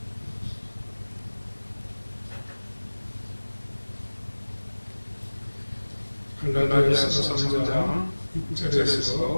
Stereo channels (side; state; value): both; inverted; correlation -1.00